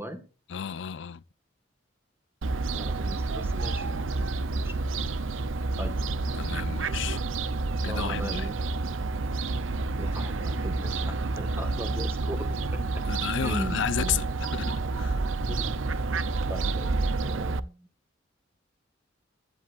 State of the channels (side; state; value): both; normal; correlation 0.63